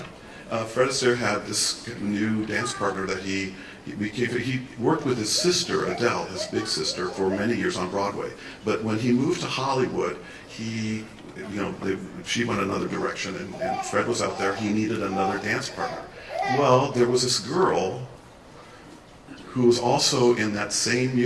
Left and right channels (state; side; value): identical; both; correlation 1.00